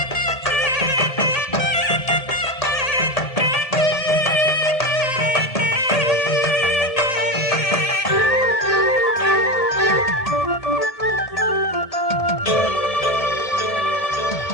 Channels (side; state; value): right; late; 1.7 ms